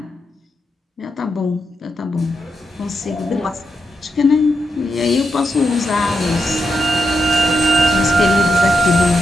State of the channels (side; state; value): both; normal; correlation 0.83